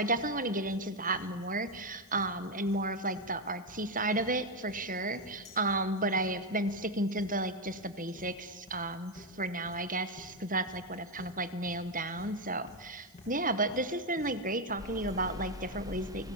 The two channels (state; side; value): noise; right; hiss, 28 dB below the sound